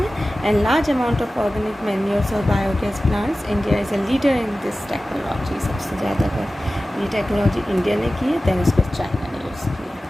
And large amount of organic manures और biogas plants, India is a leader in this technology. सबसे ज़्यादा अगर ये टेक्नोलॉजी इंडिया ने की है दैन उसको चाइना ने यूज़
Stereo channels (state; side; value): normal; both; correlation 0.96